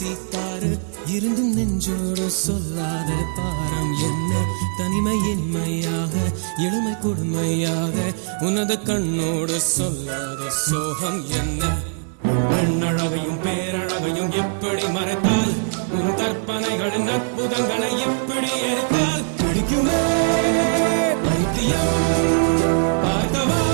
காரு இருந்தும் நெஞ்சோடு சொல்லாத பாரம் என்ன தனிமை இனிமையாக எளிமை கொடுமையாக உனது கண்ணோடு சொல்லாத சோகம் என்ன பெண்ணழகையும் பேரழகையும் எப்படி மறைத்தால் உன் கற்பனைகளின் அற்புதங்களை எப்படி எரித்தால் பிடிக்குமே பைத்தியம் பார்க்கவா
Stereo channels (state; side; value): silent; left; digital silence